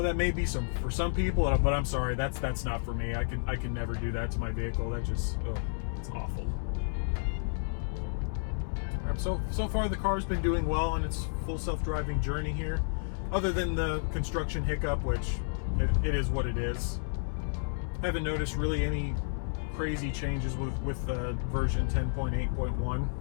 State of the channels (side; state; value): right; silent; 57 dB below the other